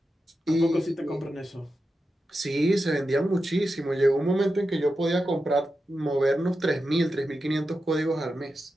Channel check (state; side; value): normal; both; correlation 0.90